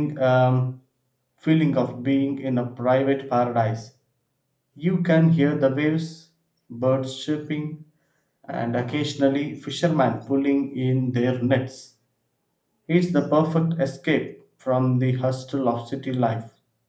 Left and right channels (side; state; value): both; identical; correlation 1.00